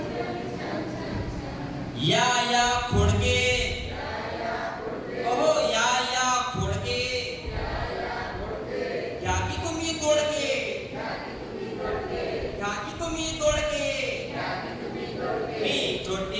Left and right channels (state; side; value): identical; both; correlation 1.00